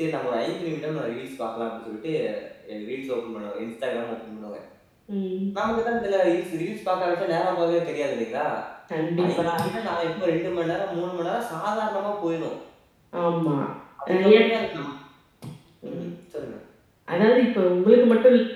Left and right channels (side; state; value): both; identical; correlation 1.00